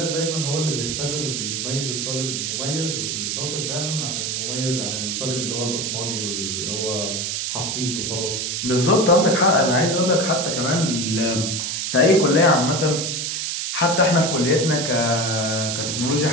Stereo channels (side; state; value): right; noise; hiss, 2 dB below the sound